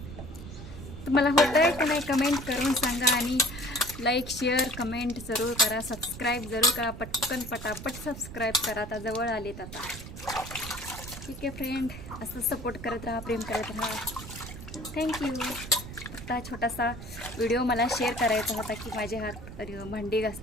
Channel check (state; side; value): noise; right; rumble, 11 dB below the sound